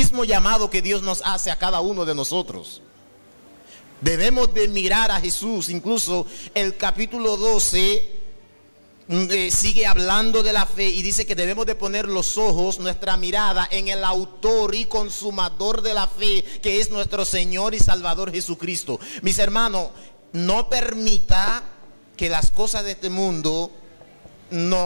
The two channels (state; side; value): inverted; both; correlation -1.00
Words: llamado que Dios nos hace a cada uno de nosotros. Debemos de mirar a Jesús. Incluso el capítulo 12 sigue hablando de la fe y dice que debemos de poner los ojos, nuestra mirada en el autor y consumador de la fe, que es nuestro Señor y Salvador Jesucristo. Mis hermanos, no permita que las cosas de este mundo